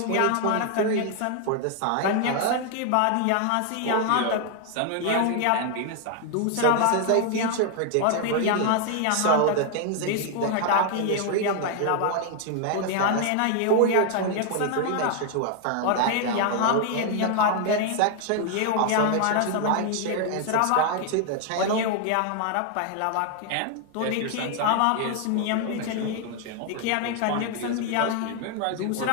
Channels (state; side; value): different; both; correlation 0.00